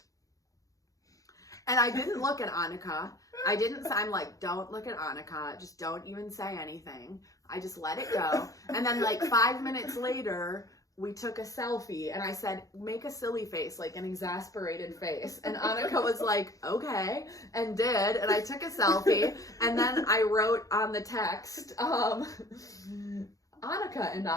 And I didn't look at Annika. I'm like, don't look at Annika. Just don't even say anything. I just let it go. And then like 5 minutes later, we took a selfie, and I said, make a silly face, like an exasperated face. And Annika was like, okay, and did. And I took a selfie, and then I wrote on the text, Annika and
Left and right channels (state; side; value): late; right; 0.17 ms